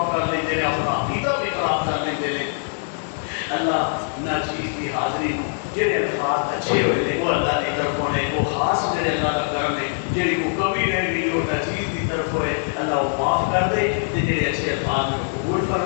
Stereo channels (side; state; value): right; silent; digital silence